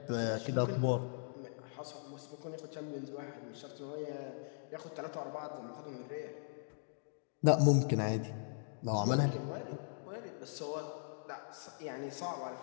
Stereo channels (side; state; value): right; silent; digital silence